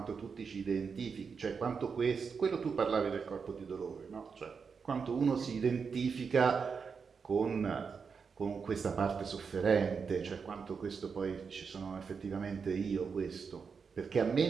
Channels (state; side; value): quieter; left; 5.7 dB